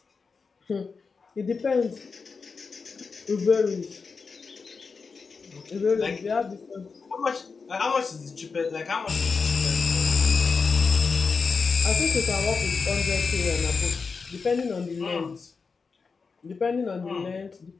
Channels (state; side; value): quieter; right; 4.9 dB